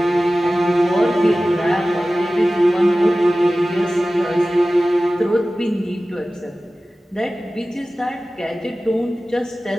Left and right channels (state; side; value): normal; both; correlation 0.96